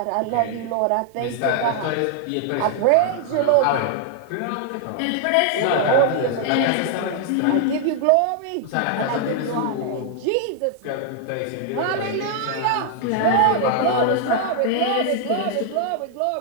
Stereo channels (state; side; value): different; both; correlation 0.00